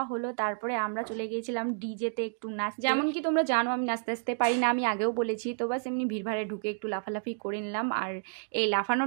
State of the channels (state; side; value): silent; left; digital silence